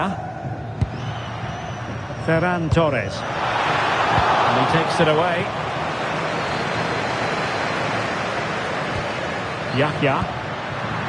Ferran Torres. And he takes it away. Yahya.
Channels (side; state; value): both; identical; correlation 1.00